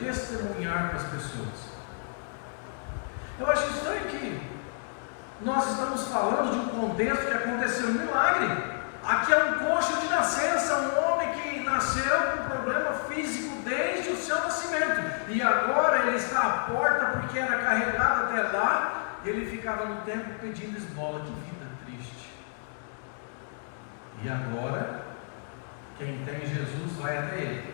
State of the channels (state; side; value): silent; right; digital silence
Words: para as pessoas? Eu acho estranho que nós estamos falando de um contexto que aconteceu um milagre. Aqui é um coxo de nascença, um homem que nasceu com problema físico desde o seu nascimento, e agora ele está à porta porque era carregado até lá, e ele ficava no templo pedindo esmola. Que vida triste. E agora, quem tem Jesus vai até